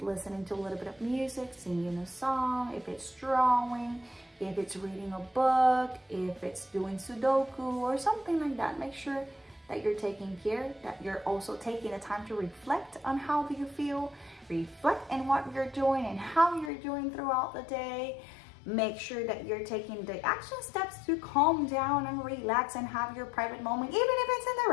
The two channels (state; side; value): drops out; right; at 16.7 s